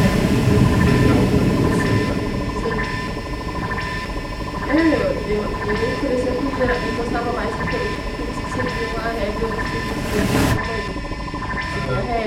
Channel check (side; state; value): both; identical; correlation 1.00